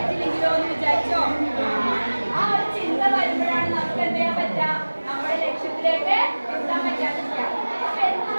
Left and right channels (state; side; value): inverted; both; correlation -1.00